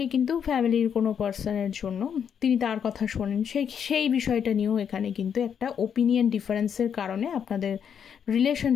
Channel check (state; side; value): quieter; right; 7.8 dB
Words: কিন্তু ফ্যামিলির কোনো পার্সনের জন্য তিনি তার কথা শোনেন, সেই বিষয়টা নিয়েও এখানে কিন্তু একটা ওপিনিয়ন ডিফারেন্সের কারণে আপনাদের